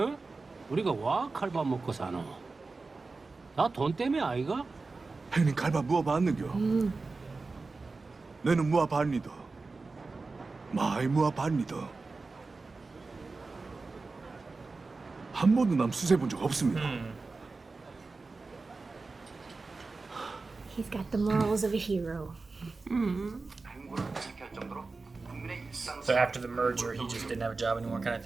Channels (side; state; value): left; quieter; 3.8 dB